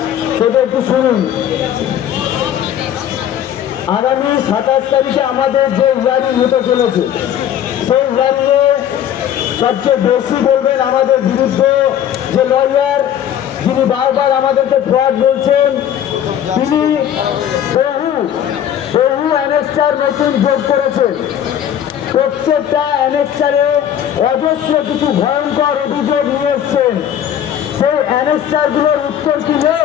সেটা একটু শুনুন। আগামী 27 তারিখে আমাদের যে হিয়ারিং হতে চলেছে, সেই হিয়ারিংয়ে সবচেয়ে বেশি বলবেন আমাদের বিরুদ্ধে যে লয়ার, যিনি বারবার আমাদেরকে ফ্রড বলছেন, তিনি বহু অ্যানেক্সার নতুন যোগ করেছেন। প্রত্যেকটা অ্যানেক্সারে অজস্র কিছু ভয়ঙ্কর অভিযোগ নিয়ে এসছেন। সেই অ্যানেক্সারগুলোর উত্তর কি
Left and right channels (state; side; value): quieter; right; 10.1 dB